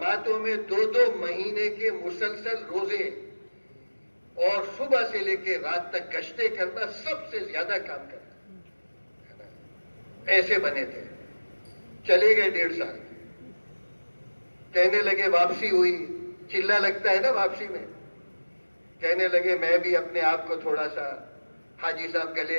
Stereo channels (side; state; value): both; inverted; correlation -1.00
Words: میں 2-2 مہینے کے مسلسل روزے اور صبح سے لے کے رات تک گشتیں کرنا, سب سے زیادہ کام کرنا. ایسے بنے تھے. چلے گئے 1.5 سال. کہنے لگے واپسی ہوئی, چلہ لگتا ہے نا واپسی میں. کہنے لگے میں بھی اپنے آپ کو تھوڑا سا حاجی صاحب گلے